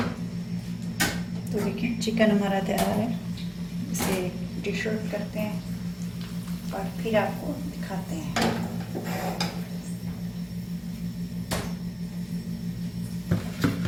तो देखिए चिकन हमारा तैयार है, इसे डिश आउट करते हैं और फिर आपको दिखाते हैं।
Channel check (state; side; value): identical; both; correlation 1.00